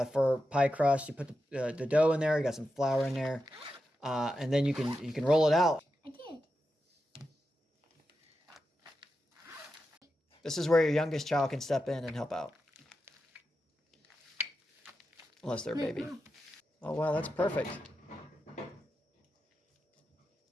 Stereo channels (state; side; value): normal; both; correlation 0.89